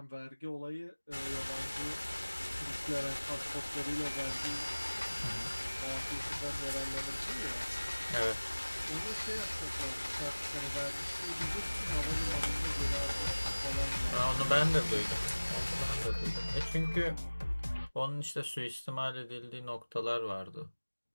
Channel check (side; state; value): both; inverted; correlation -1.00